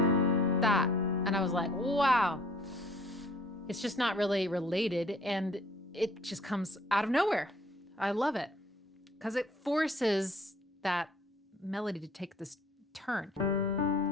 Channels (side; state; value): both; normal; correlation 0.56